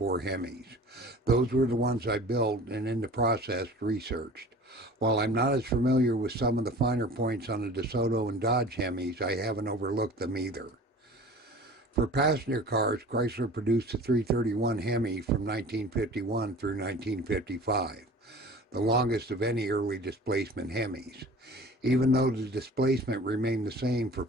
HEMIs. Those were the ones I built and in the process researched. While I'm not as familiar with some of the finer points on the DeSoto and Dodge HEMIs, I haven't overlooked them either. For passenger cars, Chrysler produced the 331 HEMI from 1951 through 1955, the longest of any early displacement HEMIs. Even though the displacement remained the same for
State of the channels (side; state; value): both; normal; correlation 0.42